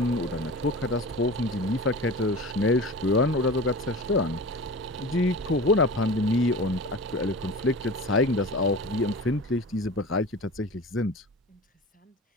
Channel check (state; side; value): normal; both; correlation 0.34